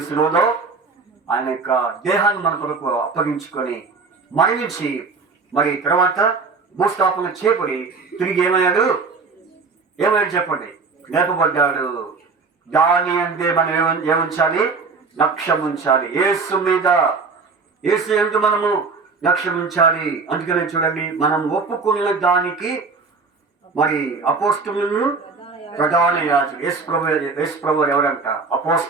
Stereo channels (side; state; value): left; quieter; 4.5 dB